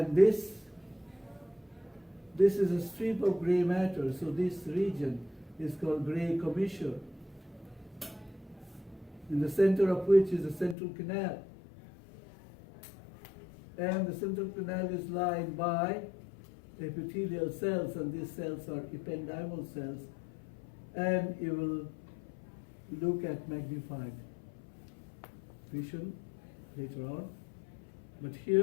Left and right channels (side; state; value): right; drops out; at 10.8 s